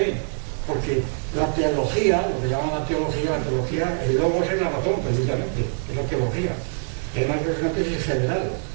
porque la teología, lo que llaman la teología, el logos es la razón, precisamente, es la teología. Y además es una tesis general,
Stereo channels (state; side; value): silent; left; digital silence